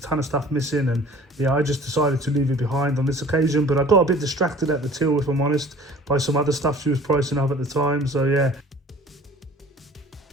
of stuff missing, and yeah, I just decided to leave it behind on this occasion. But I got a bit distracted at the till, if I'm honest, by some other stuff she was pricing up at the time, so yeah.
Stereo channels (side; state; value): both; normal; correlation 0.48